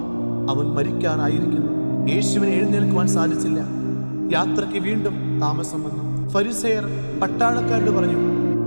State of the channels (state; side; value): inverted; both; correlation -1.00